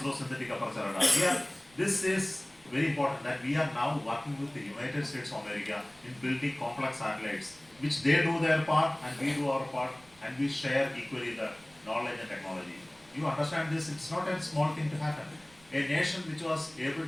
Synthetic Aperture Radar. This is very important that we are now working with the United States of America in building complex satellites, which they do their part and we do our part, and we share equally the knowledge and technology. You understand this? It's not a small thing to happen. A nation which was able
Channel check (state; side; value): noise; right; rumble, 28 dB below the sound